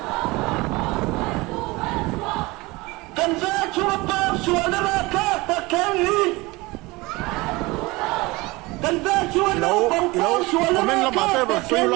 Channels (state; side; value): quieter; left; 22.7 dB